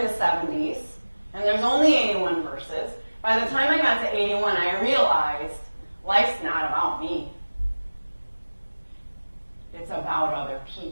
the 70s, and there's only 81 verses, by the time I got to 81, I realized life's not about me. It's about other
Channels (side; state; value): both; inverted; correlation -1.00